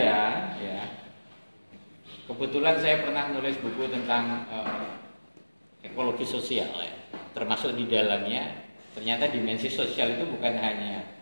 ya, kebetulan saya pernah nulis buku tentang ekologi sosial ya, termasuk di dalamnya ternyata dimensi sosial itu bukan hanya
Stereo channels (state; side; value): inverted; both; correlation -1.00